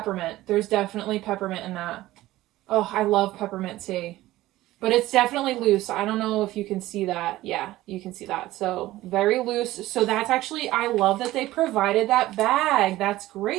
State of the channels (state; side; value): quieter; left; 16.4 dB